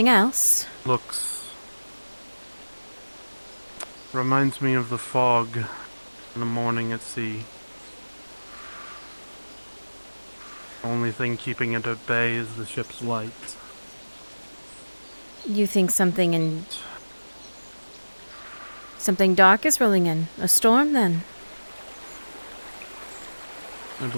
else? Looks. Reminds me of the fog in the morning at sea. Only thing keeping it at bay is the ship's lights. You think something dark is rolling in? A storm, then? I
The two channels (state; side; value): inverted; both; correlation -1.00